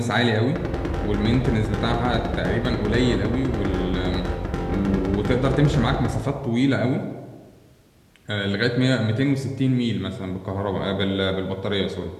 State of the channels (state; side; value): identical; both; correlation 1.00